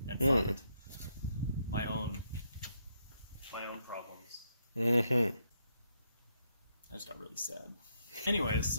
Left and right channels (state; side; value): inverted; both; correlation -0.77